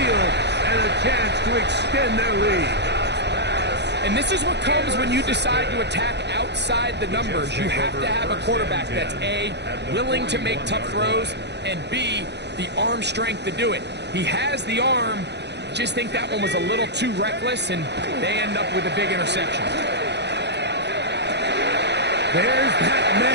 and a chance to extend their lead. And this is what comes when you decide to attack outside the numbers. You have to have a quarterback that's A, willing to make tough throws, and B, the arm strength to do it. He has the arm, just think that one was a little too reckless, and they end up with a big interception. There's that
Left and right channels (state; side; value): late; left; 0.50 ms